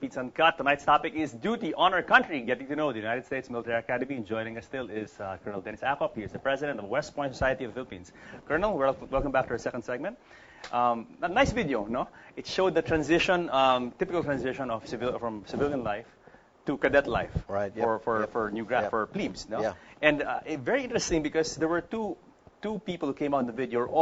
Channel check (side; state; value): both; identical; correlation 1.00